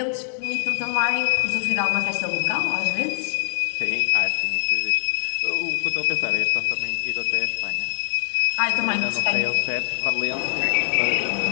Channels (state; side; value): silent; right; digital silence